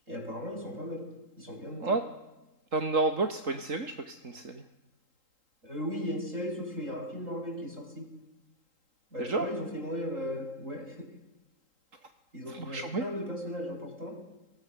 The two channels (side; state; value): left; late; 3.8 ms